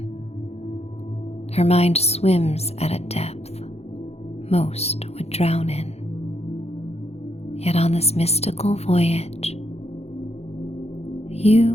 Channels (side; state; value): right; late; 0.30 ms